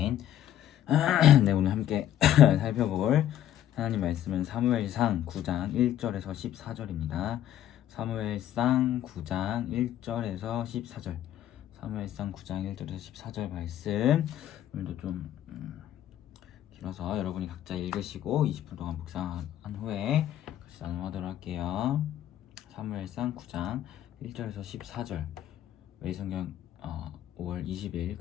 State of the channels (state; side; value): quieter; right; 11.6 dB